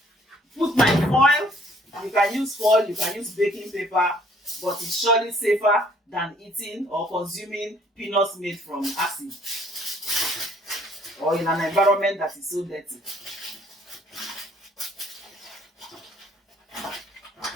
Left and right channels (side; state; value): both; normal; correlation 0.61